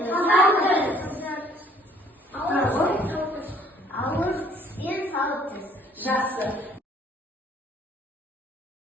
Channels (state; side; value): normal; both; correlation 0.61